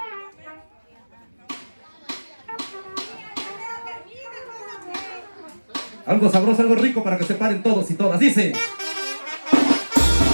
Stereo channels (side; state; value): both; inverted; correlation -1.00